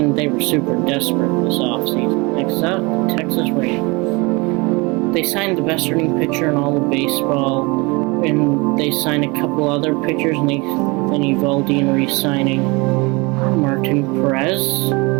they were super desperate this offseason. Next up, the Texas Rangers. They signed the best starting pitcher in all of baseball, and they signed a couple other pitchers, and then Evaldi and re-signing Martin Perez.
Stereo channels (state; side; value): quieter; left; 26.5 dB